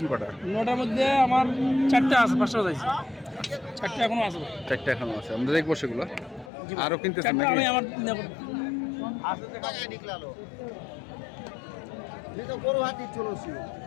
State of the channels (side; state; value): right; drops out; at 6.5 s